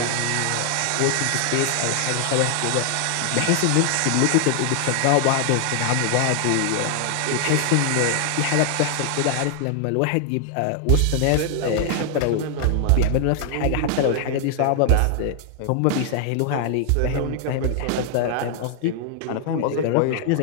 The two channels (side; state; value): both; different; correlation 0.00